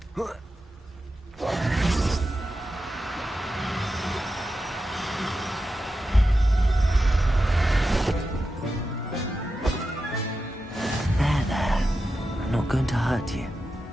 There. I'm not going to hurt you.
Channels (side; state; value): both; normal; correlation 0.90